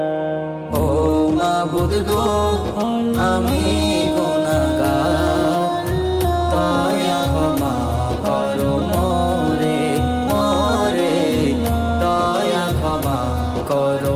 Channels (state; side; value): identical; both; correlation 1.00